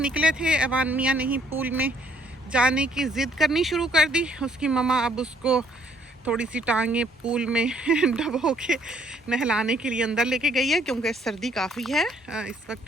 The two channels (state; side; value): normal; both; correlation 0.64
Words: थे, ऐवान मियाँ ने ही पूल में जाने की ज़िद करनी शुरू कर दी। उसकी मम्मा अब उसको थोड़ी सी टांगे पूल में डबो के नहलाने के लिए अंदर लेके गई है, क्योंकि सर्दी काफ़ी है। इस वक्त